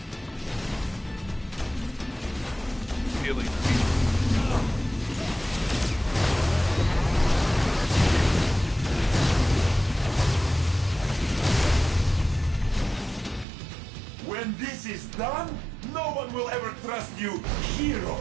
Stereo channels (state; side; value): drops out; left; at 13.5 s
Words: Feeling. When this is done, no one will ever trust you